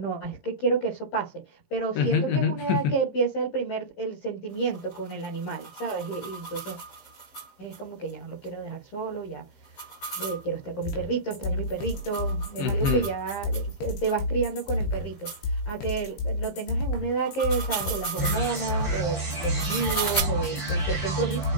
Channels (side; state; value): right; late; 15 ms